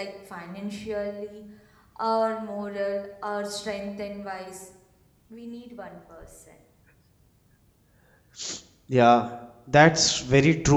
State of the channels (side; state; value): both; identical; correlation 1.00